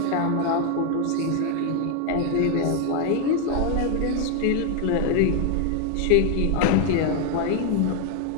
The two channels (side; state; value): both; different; correlation 0.01